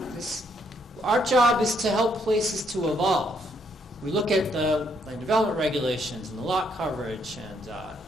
Our job is to help places to evolve. We look at the land development regulations and the lot coverage and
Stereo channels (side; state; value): both; normal; correlation 0.72